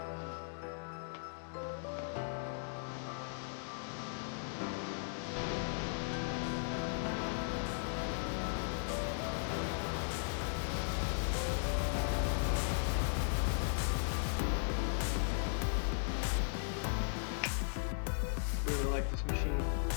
Like this machine.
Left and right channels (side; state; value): right; silent; digital silence